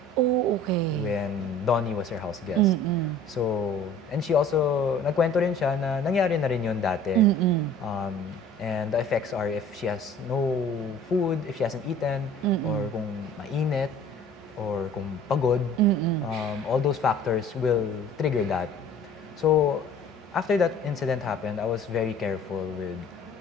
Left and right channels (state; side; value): normal; both; correlation 0.48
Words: Oh, okay. When Donnie was her house guest. So, and she also, nagkwento rin siya na nangyari na rin yun dati. And the effects are if she has no food, if she hasn't eaten, or kung mainit, or kung pagod, all those factors will trigger that. So, after that incident happened, I was very careful